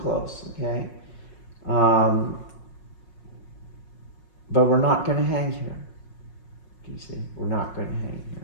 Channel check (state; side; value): late; right; 5.5 ms